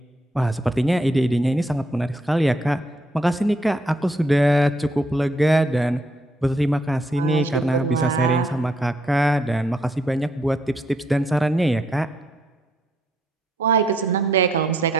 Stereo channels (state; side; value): normal; both; correlation 0.73